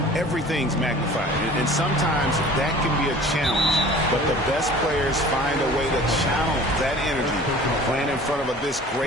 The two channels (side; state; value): both; normal; correlation 0.45